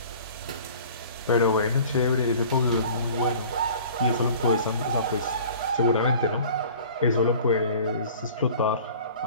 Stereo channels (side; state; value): both; inverted; correlation -0.46